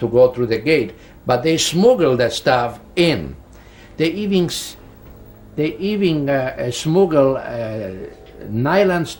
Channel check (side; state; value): both; identical; correlation 1.00